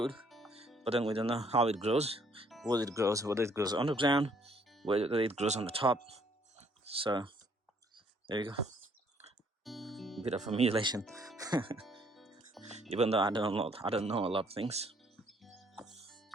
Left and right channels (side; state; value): both; normal; correlation 0.64